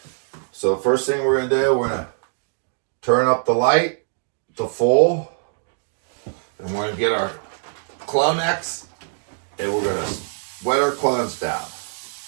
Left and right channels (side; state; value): left; silent; digital silence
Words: So first thing we're going to do, we're going to turn up the light to full, and we're going to get our Clonex, and we're going to wet our clones down.